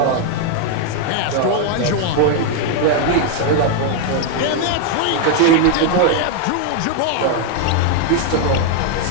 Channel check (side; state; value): both; different; correlation 0.00